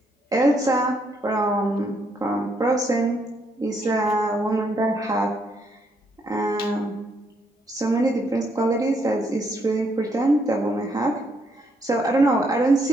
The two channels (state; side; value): normal; both; correlation 0.73